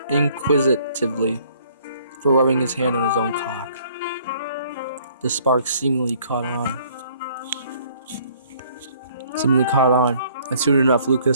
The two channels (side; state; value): both; inverted; correlation -0.61